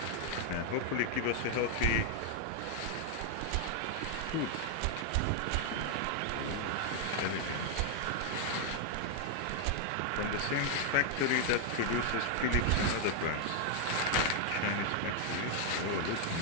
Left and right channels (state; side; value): different; both; correlation 0.00